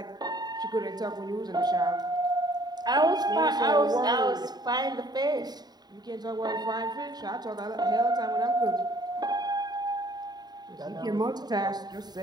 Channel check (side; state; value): left; late; 0.20 ms